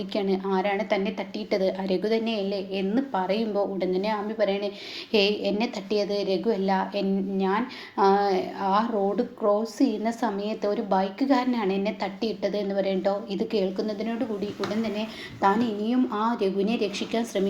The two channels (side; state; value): both; identical; correlation 1.00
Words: ആരാണ് തന്നെ തട്ടിയിട്ടത്? രഘു തന്നെയല്ലേ എന്ന് പറയുമ്പോൾ ഉടൻ തന്നെ ആമി പറയണേ, എന്നെ തട്ടിയത് രഘു അല്ല. ഞാൻ ആ റോഡ് ക്രോസ് ചെയ്യുന്ന സമയത്ത് ഒരു ബൈക്കുകാരനാണ് എന്നെ തട്ടിയിട്ടത് എന്ന് പറയട്ടോ. ഇത് കേൾക്കുന്നതിനോട് കൂടി ഉടൻ തന്നെ താൻ ഇനിയും ആ രഘുവിനെ രക്ഷിക്കാൻ